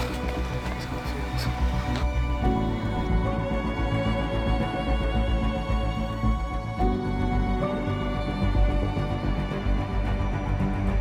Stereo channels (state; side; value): identical; both; correlation 1.00